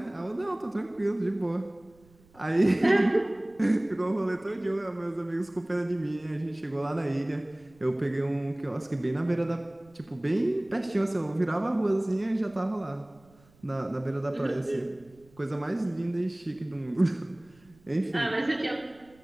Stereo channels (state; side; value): noise; right; rumble, 29 dB below the sound